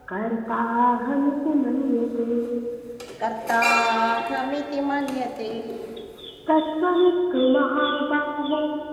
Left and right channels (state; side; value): identical; both; correlation 1.00